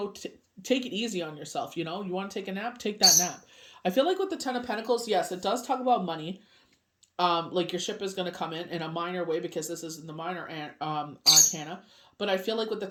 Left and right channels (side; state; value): both; identical; correlation 1.00